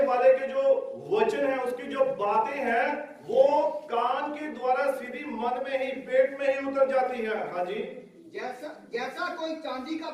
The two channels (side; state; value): both; identical; correlation 1.00